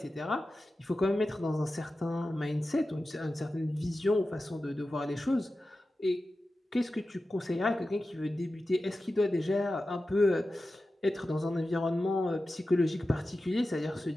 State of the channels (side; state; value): both; normal; correlation 0.93